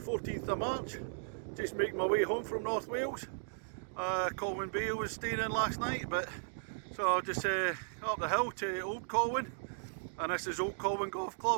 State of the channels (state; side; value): silent; left; digital silence